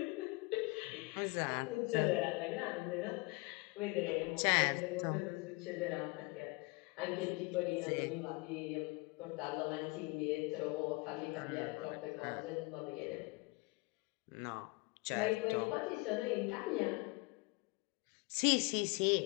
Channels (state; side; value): quieter; right; 26.9 dB